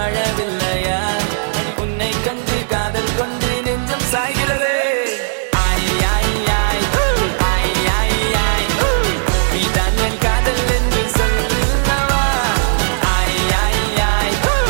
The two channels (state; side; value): silent; left; digital silence